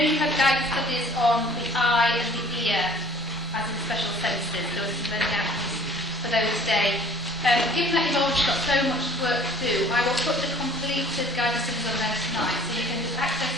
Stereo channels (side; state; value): both; normal; correlation 0.52